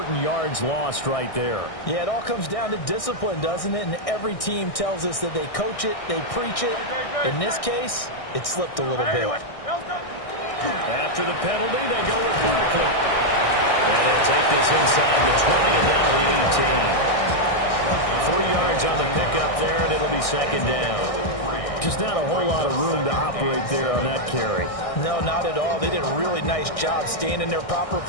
yards lost right there. Yeah, it all comes down to discipline, doesn't it? And every team tells us that they coach it, they preach it. In this case, it slipped a little bit. After the penalty, they go with Barkley. And they'll take this inside the 20 and down to the 18. 3 yards on the pickup there, and it'll be 2nd down. Just not a whole lot of room to operate there on that carry. No, not at all. They did a really nice job staying in their proper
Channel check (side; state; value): right; late; 1.6 ms